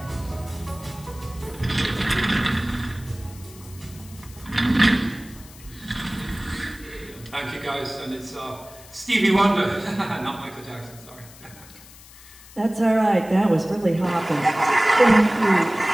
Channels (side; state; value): left; noise; hiss, 21 dB below the sound